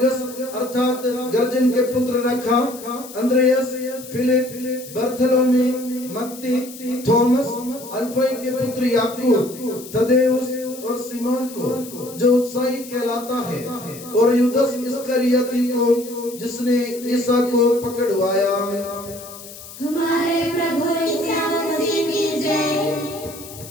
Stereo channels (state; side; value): noise; left; hiss, 15 dB below the sound